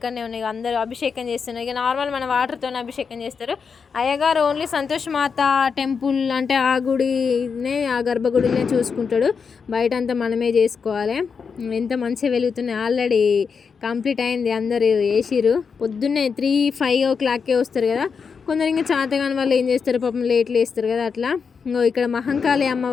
ఉన్నాయి. అందరూ అభిషేకం చేస్తున్నారు. ఇక నార్మల్ మన వాటర్తోనే అభిషేకం చేస్తారు. అయ్యగారు ఓన్లీ సంతోష్ మాత టెంపుల్ అంటే ఆ గుడినే, ఆ గర్భగుడినే చూసుకుంటాడు, బయట అంతా మనమే చేసుకోవాలి. ఎంత మంచిగా వెలుగుతున్నాయి, ఆల్రెడీ కంప్లీట్ అయింది, అందరూ వేసిరు. పొద్దున్నే 3-5 o'clockకే వస్తారు కదా, కొందరు ఇంకా చాతగాని వాళ్ళు ఏం చేస్తారు పాపం లేట్లు వేస్తారు కదా, అట్లా. ఇక్కడ మహంకాళి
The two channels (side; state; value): right; quieter; 5.8 dB